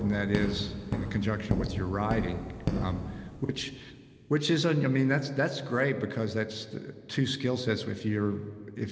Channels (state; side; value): identical; both; correlation 1.00